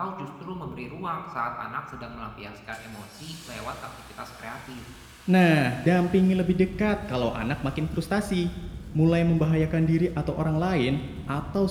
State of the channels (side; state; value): both; identical; correlation 1.00